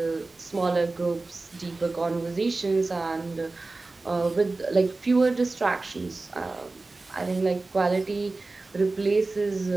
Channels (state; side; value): quieter; left; 3.4 dB